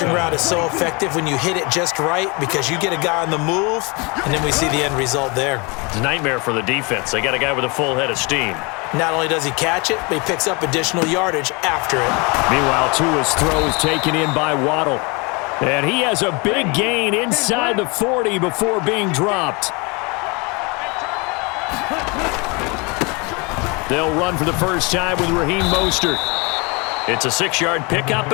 route is so effective when you hit it just right because you get a guy on the move, and then we see the end result there. It's a nightmare for the defense. They got a guy with a full head of steam. Not only does he catch it, but he picks up additional yardage after it. Meanwhile, Tua's throw is taken in by Waddle. And he has a big gain inside the 40 before being dropped. They'll run for the first time with Raheem Mostert. It's a 6-yard pickup,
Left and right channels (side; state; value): right; quieter; 29.0 dB